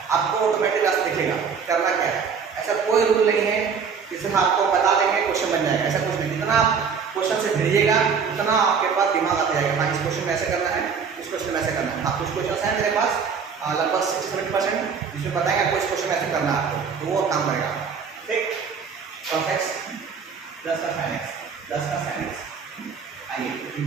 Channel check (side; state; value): left; quieter; 6.1 dB